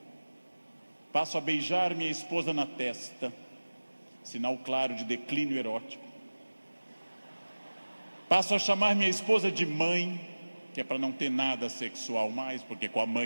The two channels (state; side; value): inverted; both; correlation -1.00